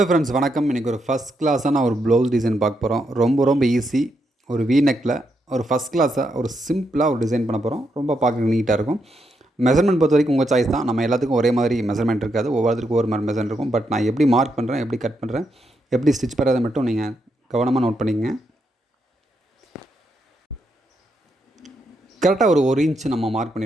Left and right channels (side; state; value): both; normal; correlation 0.80